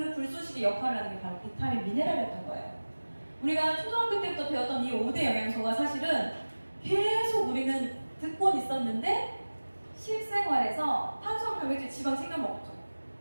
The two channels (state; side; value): inverted; both; correlation -1.00